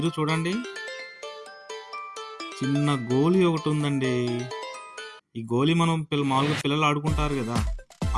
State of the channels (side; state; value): both; identical; correlation 1.00